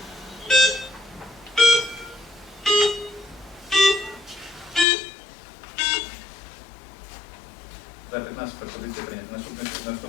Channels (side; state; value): right; drops out; at 4.9 s